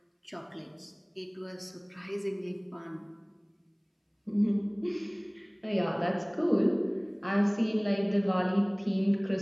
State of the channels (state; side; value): identical; both; correlation 1.00